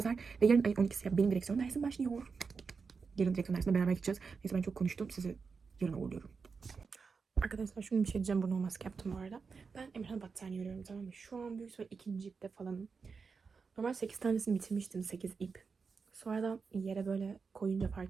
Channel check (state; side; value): quieter; left; 5.1 dB